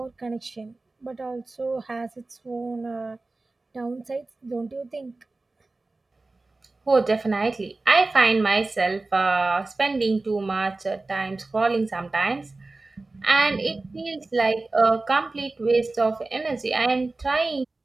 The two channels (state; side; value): quieter; left; 3.3 dB